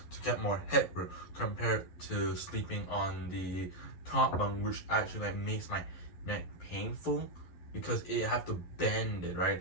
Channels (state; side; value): late; right; 11 ms